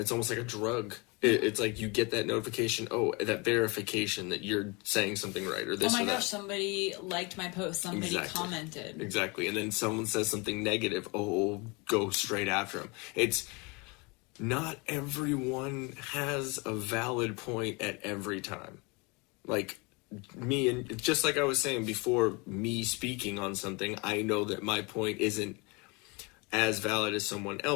almost like a drug. It's like you get that notification, that verification that you're saying something right, or this or that. Oh my gosh, somebody liked my post, somebody commented. Exactly. And then someone says something negative, go straight after them. It's not everyone has a valid point at every time. Like me, and just like I was saying before, me speaking on something, I know that my point isn't as valid as someone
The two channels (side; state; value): right; quieter; 28.7 dB